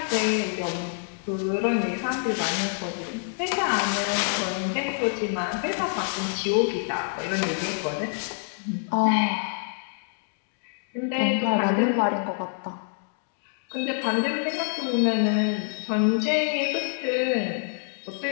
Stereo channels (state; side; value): silent; right; digital silence